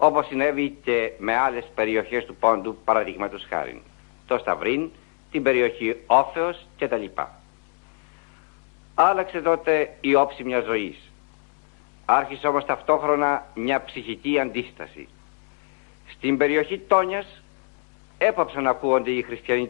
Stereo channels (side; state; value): right; silent; 57 dB below the other